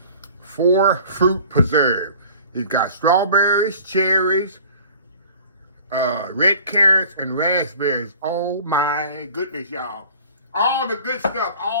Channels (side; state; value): both; inverted; correlation -0.46